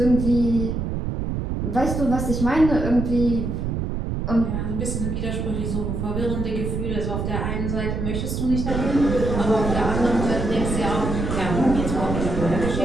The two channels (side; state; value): right; noise; rumble, 2 dB below the sound